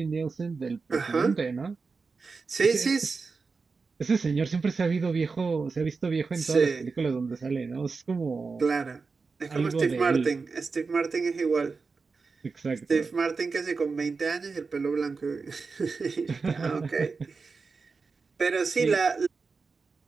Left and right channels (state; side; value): quieter; left; 4.6 dB